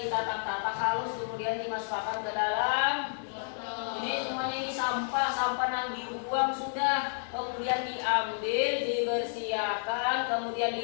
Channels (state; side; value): silent; right; 57 dB below the other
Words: halus, kemudian dimasukkan ke dalam. Ini semuanya ini sampah yang dibuang sudah, kemudian diambil, dibersihkan, kemudian